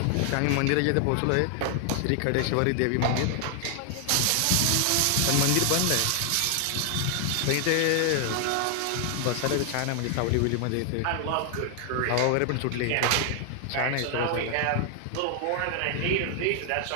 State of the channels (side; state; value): both; different; correlation 0.00